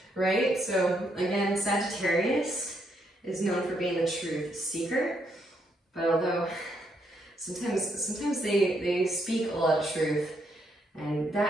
right? So again, Sagittarius is known for being the truth seeker, but although sometimes they speak a lot of truth, and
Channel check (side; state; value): both; normal; correlation 0.76